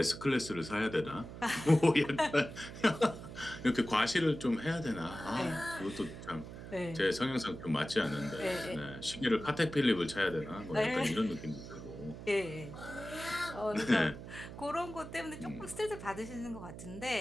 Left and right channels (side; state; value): right; noise; hum, 12 dB below the sound